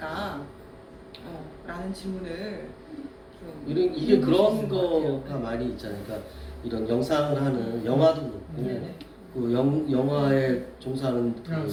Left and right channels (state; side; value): identical; both; correlation 1.00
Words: 라는 질문을 좀 이게 그런 거가 많이 있잖아요. 그러니까 이런 영상을 하는 영화도 그렇고 그 영화에 종사하는 그